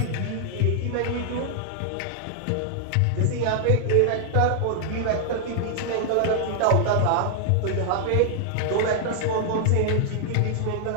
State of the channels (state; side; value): different; both; correlation -0.01